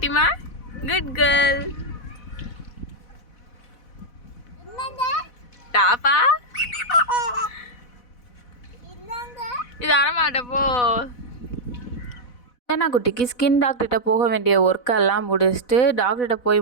Good girl. டாப்பா இது அறமாட்டப்போ. அஞ்சனா குட்டிக்கு ஸ்கின் டாக்டர்கிட்ட போக வேண்டிய ஒர்க்கெல்லாம் முடிச்சுட்டு டாக்டர்கிட்ட போய்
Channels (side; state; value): right; late; 4.1 ms